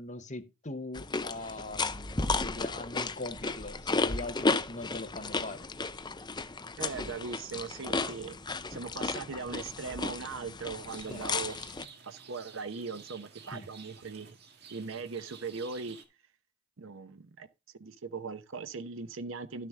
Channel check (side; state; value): both; normal; correlation 0.23